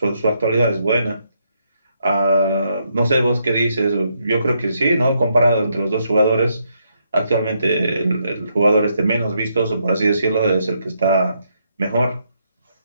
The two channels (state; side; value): inverted; both; correlation -0.76